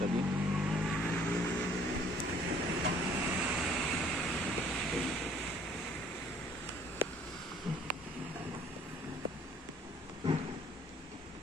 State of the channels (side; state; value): both; normal; correlation 0.58